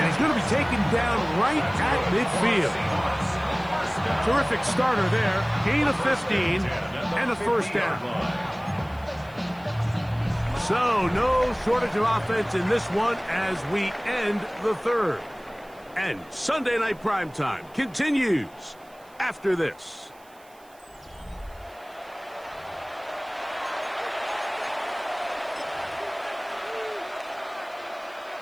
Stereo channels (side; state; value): right; noise; hiss, 28 dB below the sound